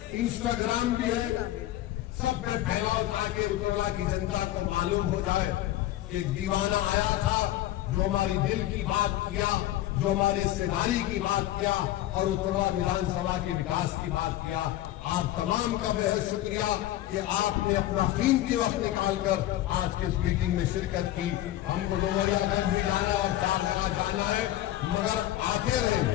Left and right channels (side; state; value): right; quieter; 14.4 dB